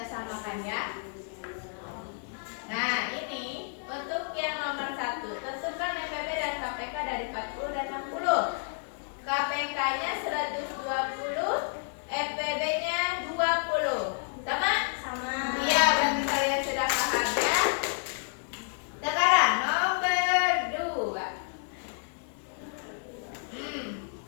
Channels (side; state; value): right; silent; 57 dB below the other